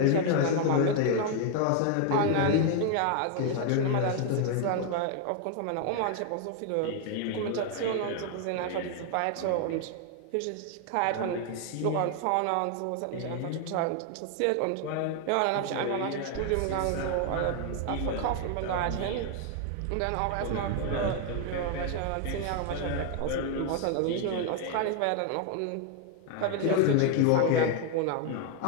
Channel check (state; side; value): different; both; correlation 0.01